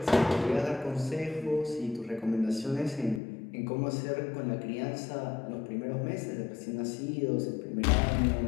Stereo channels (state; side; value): drops out; right; at 3.2 s